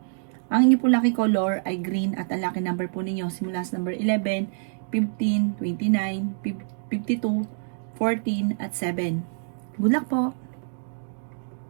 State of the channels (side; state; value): left; silent; digital silence